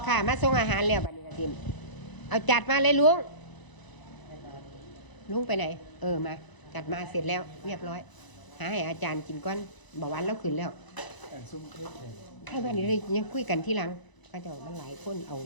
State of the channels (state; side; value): late; right; 1.0 ms